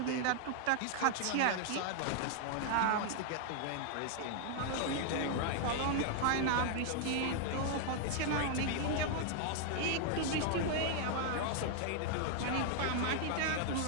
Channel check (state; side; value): different; both; correlation 0.00